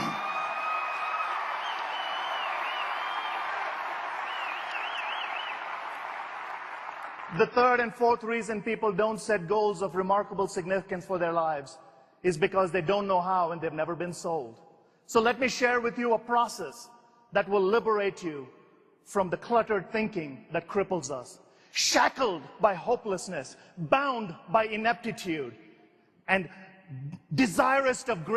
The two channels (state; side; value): identical; both; correlation 1.00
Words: The third and fourth reason people don't set goals of remarkable significance for their lives is because they don't know how and they've never been sold. So let me share with you a process that will liberate you from the cluttered thinking that cripples us. Shackled by hopelessness, bound by ineptitude, and desirous of